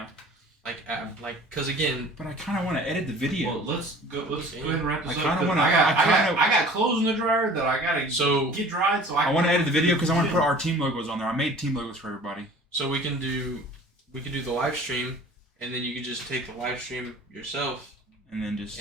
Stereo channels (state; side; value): normal; both; correlation 0.46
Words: Because again, But I kind of want to edit the video. Well, let's go ahead and wrap this I up. kinda 'cause wanna- I got clothes in the dryer that I gotta get dried. So I want to edit the video because I want to put our team logos on there. I made team logos for everybody. so we can do the live stream, and then you can just take the live stream yourself, And then just.